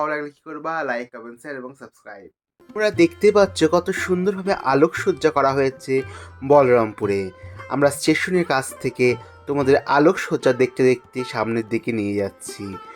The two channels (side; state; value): both; identical; correlation 1.00